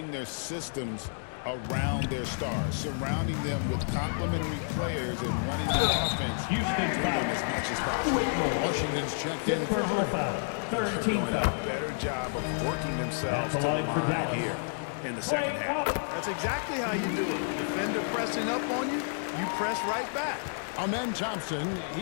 their systems around their stars, surrounding them with complementary players and running the offense through them as much as possible. Washington's checked in for Hardy. Doing a better job of working themselves to the line here in the second half. That's exactly how you do it. Defender pressing up on you, you press right back. Amen Thompson,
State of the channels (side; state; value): right; silent; digital silence